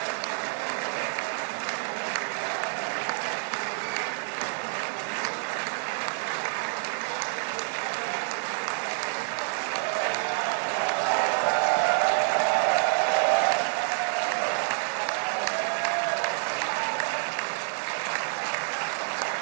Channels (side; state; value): left; silent; 59 dB below the other